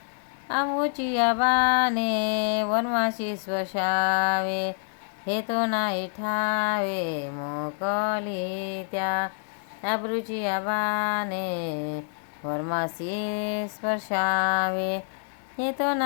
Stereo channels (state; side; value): silent; right; digital silence